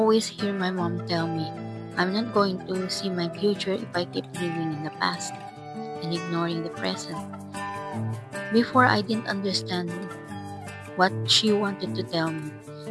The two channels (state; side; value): identical; both; correlation 1.00